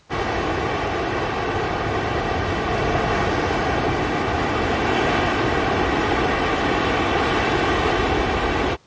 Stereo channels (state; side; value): identical; both; correlation 1.00